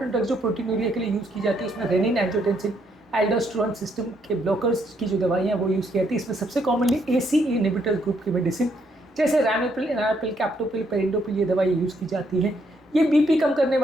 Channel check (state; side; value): normal; both; correlation 0.73